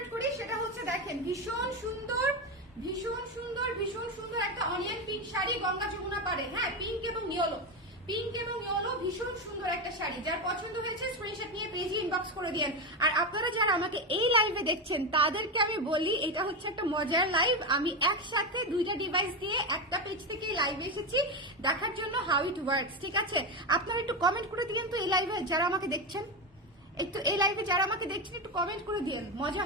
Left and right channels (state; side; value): normal; both; correlation 0.14